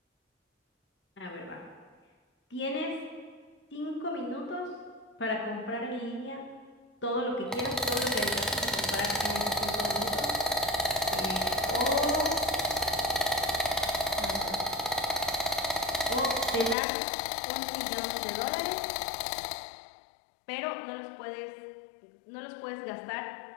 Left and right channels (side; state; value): right; drops out; at 16.8 s